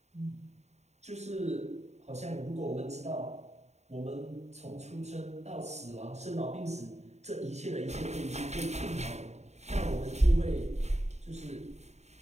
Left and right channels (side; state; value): left; late; 0.32 ms